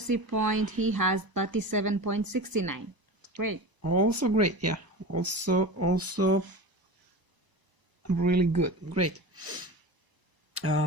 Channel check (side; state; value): left; late; 1.0 ms